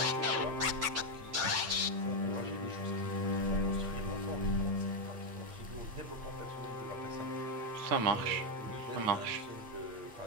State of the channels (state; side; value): late; left; 9.0 ms